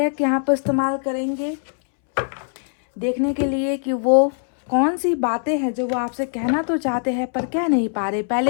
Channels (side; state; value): right; silent; 65 dB below the other